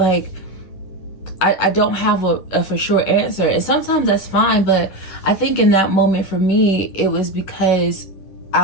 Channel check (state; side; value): late; right; 10 ms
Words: I don't have a for sure answer. And sometimes that's fine, but I think in that moment for me, it was because